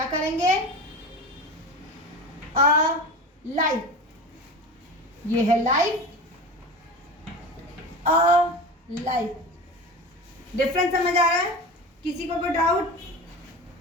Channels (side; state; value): both; normal; correlation 0.30